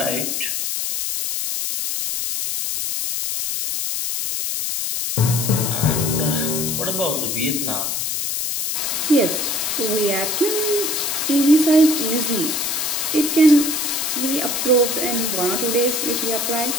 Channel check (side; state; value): left; noise; hiss, 1 dB below the sound